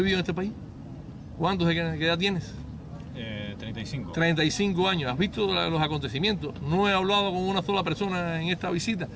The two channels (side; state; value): both; identical; correlation 1.00